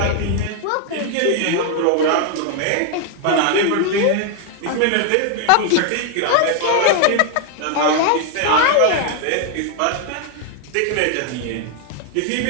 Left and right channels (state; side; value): different; both; correlation 0.00